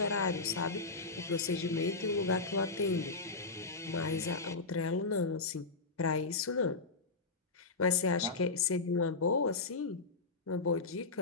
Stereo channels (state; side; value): quieter; right; 3.9 dB